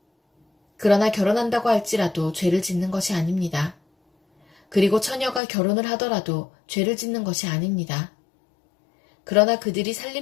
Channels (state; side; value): drops out; right; at 5.4 s